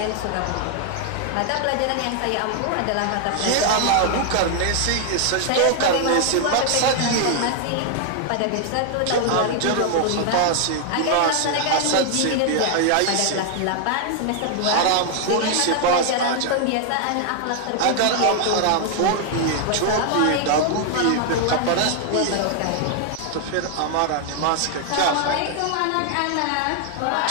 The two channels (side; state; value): both; different; correlation 0.00